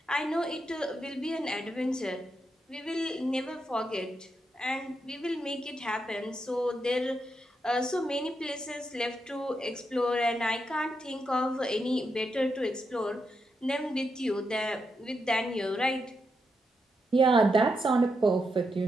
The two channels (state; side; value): normal; both; correlation 0.83